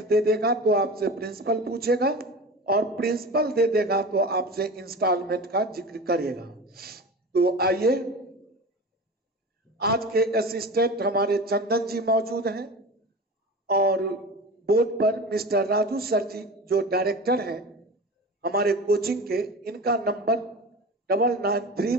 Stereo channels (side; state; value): both; normal; correlation 0.32